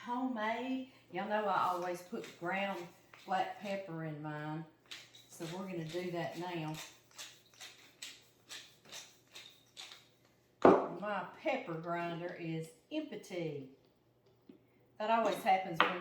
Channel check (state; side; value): identical; both; correlation 1.00